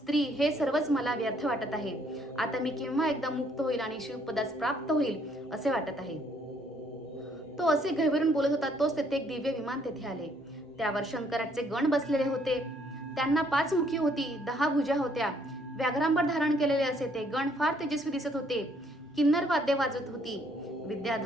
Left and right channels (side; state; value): both; normal; correlation 0.66